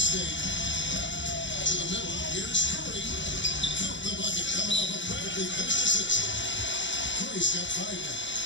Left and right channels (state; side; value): late; right; 0.54 ms